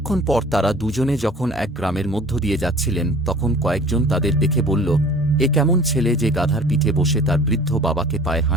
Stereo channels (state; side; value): normal; both; correlation 0.46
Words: পর তারা দুজনে যখন এক গ্রামের মধ্য দিয়ে যাচ্ছিলেন, তখন কয়েকজন তাদের দেখে বলল, এ কেমন ছেলে যে গাধার পিঠে বসে তার বৃদ্ধ বাবাকে পায়ে